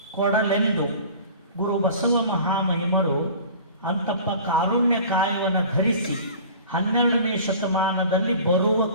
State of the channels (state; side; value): inverted; both; correlation -0.43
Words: ಕೊಡಲೆಂದು ಗುರು ಬಸವ ಮಹಾಮಹಿಮರು ಅಂತಪ್ಪ ಕಾರುಣ್ಯ ಕಾಯವನ್ನು ಧರಿಸಿ 12ನೇ ಶತಮಾನದಲ್ಲಿ